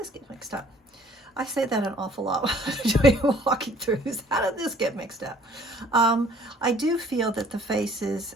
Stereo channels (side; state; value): both; normal; correlation 0.56